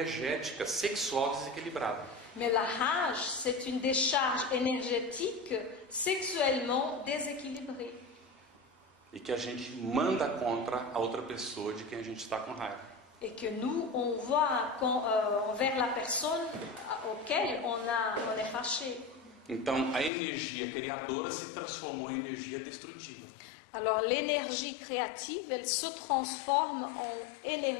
sexual desequilibrada. Mais la rage, c'est une décharge énergétique sexuellement déséquilibrée. E que a gente manda contra a outra pessoa de quem a gente está com raiva. Et que nous, on voit envers la personne auquel on est fâché. Então, a energia criadora se transformou em energia destrutiva. Alors l'énergie créative, elle se transforme en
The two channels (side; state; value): right; drops out; at 20.1 s